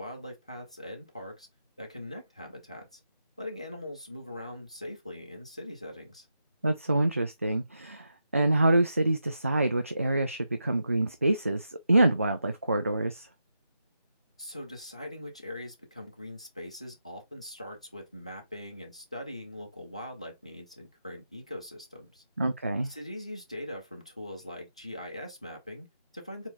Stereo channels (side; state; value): both; inverted; correlation -0.86